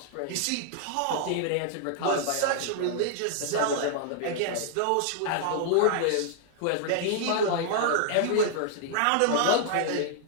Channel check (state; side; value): different; both; correlation -0.01